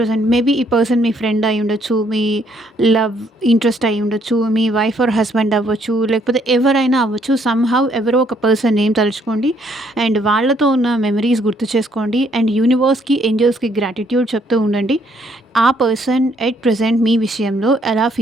మేబీ ఈ పర్సన్ మీ ఫ్రెండ్ అయి ఉండొచ్చు, మీ లవ్ ఇంట్రెస్ట్ అయి ఉండొచ్చు, మీ వైఫ్ ఆర్ హస్బెండ్ అవ్వచ్చు, లేకపోతే ఎవరైనా అవ్వచ్చు. సమ్‌హౌ ఎవరో ఒక పర్సన్ నేమ్ తలుచుకోండి అండ్ వాళ్ళతో ఉన్న మెమరీస్ గుర్తు చేసుకోండి అండ్ యూనివర్స్‌కి, ఏంజెల్స్‌కి గ్రాటిట్యూడ్ చెప్తూ ఉండండి. ఆ పర్సన్ ఎట్ ప్రెజెంట్ మీ విషయంలో ఎలా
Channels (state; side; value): normal; both; correlation 0.68